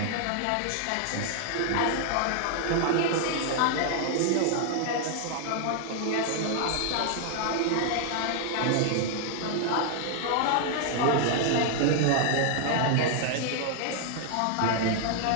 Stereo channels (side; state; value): both; different; correlation 0.00